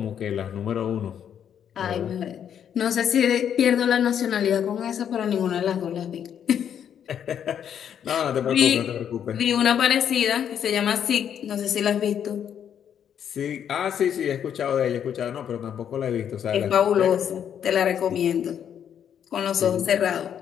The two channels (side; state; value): right; quieter; 8.9 dB